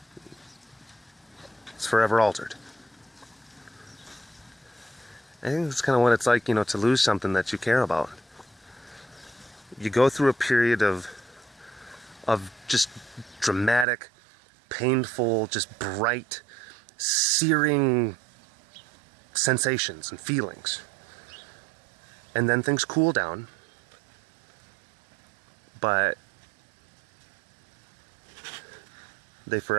It's forever altered. I think that's kind of what it's like, you know, to lose something that you care about. You go through a period of just dramatic, painful, just bright, searing sensations and feelings. And then things cool down. But they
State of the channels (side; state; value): left; drops out; at 13.9 s